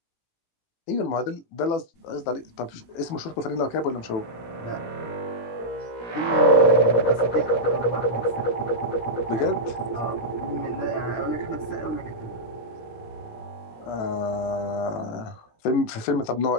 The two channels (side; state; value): right; late; 18 ms